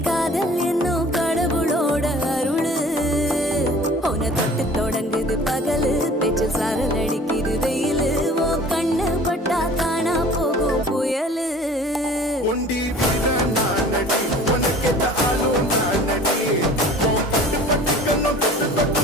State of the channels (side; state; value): both; normal; correlation 0.46